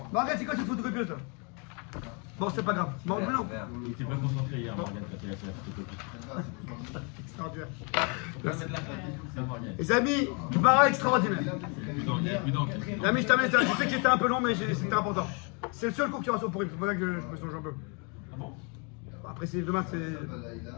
c'est quoi cette photocopieuse là? Bon, c'est pas grave. Bon, non. Il était pas concentré hier, Morgane, quand il a fait la photocopie. Extraordinaire. Les amis, Gemara extraordinaire. Les amis, je termine ça. Je sais qu'il était un peu long, mais c'était important. C'est le seul cours qui aura sur Purim. C'est pour ça que je me songe un peu. Ah bon? Après, c'est demain,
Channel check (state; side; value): quieter; right; 34.2 dB